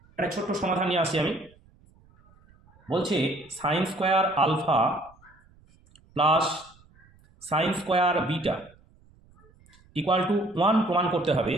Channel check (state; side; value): noise; right; rumble, 30 dB below the sound